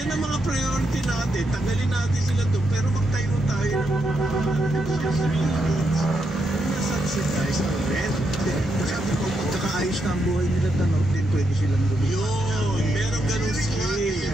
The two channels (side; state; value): both; normal; correlation 0.81